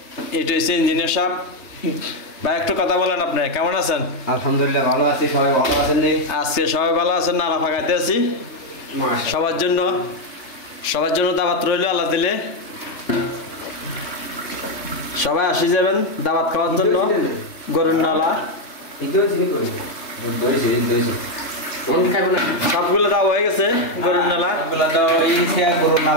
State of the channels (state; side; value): late; right; 3.3 ms